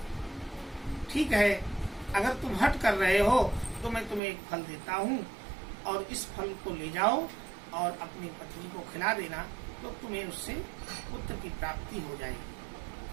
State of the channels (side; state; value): left; drops out; at 4.2 s